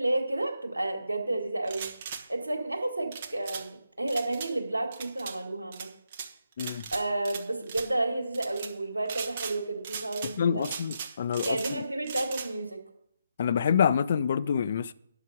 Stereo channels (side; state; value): both; inverted; correlation -0.81